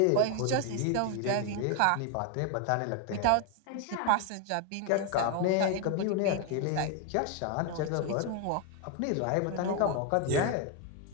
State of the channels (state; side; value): different; both; correlation 0.01